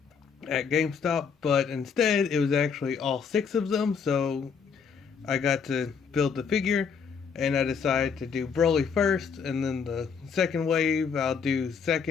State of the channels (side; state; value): right; quieter; 6.2 dB